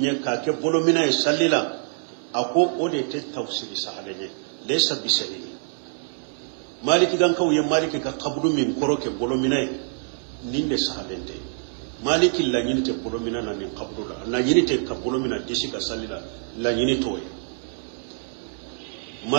ka ke bolo mina e sallila ako ode te tafsiri sahalenye laysa bisari maliki gan kaw ye maliki ka kabudu min koroke bolo mina ninde sahalente maliki la nyinte bolo mina na ni kabudu la nyinte ka bolo mina disi ka salila la nyinte toy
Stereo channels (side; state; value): left; silent; digital silence